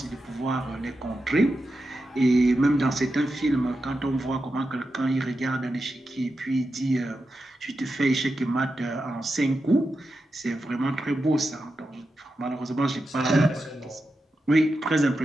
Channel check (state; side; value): normal; both; correlation 0.89